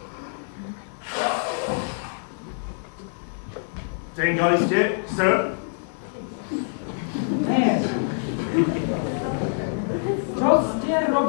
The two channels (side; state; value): right; silent; digital silence